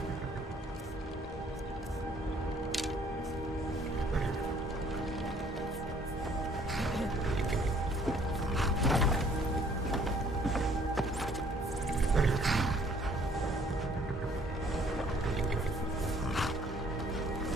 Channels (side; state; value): both; normal; correlation 0.60